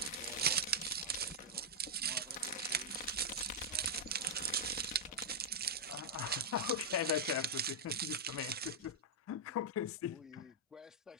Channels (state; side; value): normal; both; correlation -0.05